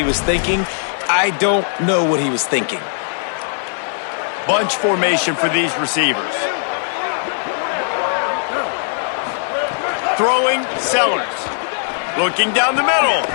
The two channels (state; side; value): silent; right; 55 dB below the other